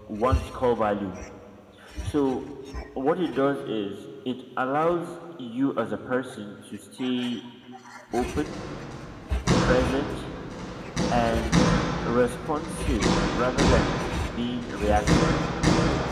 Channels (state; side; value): identical; both; correlation 1.00